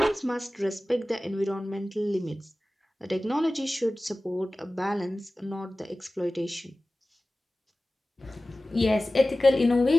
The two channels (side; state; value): both; normal; correlation 0.97